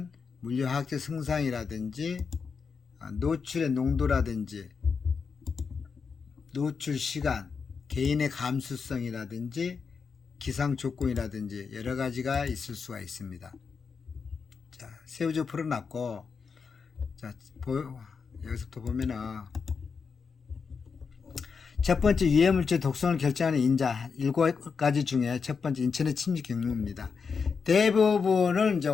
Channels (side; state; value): right; quieter; 5.6 dB